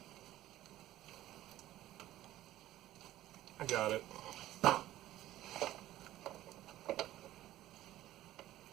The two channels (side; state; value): left; quieter; 14.4 dB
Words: I got it.